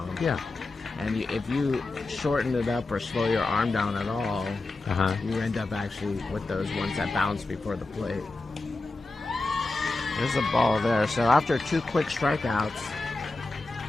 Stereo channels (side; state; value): right; quieter; 3.2 dB